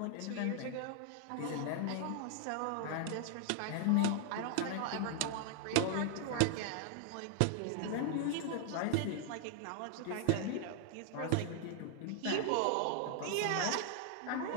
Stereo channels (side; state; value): both; different; correlation 0.00